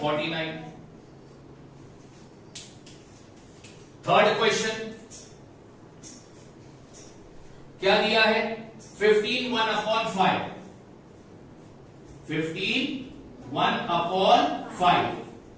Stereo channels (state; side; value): identical; both; correlation 1.00